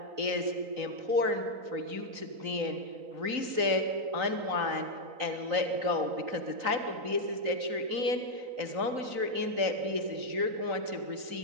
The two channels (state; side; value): late; left; 3.9 ms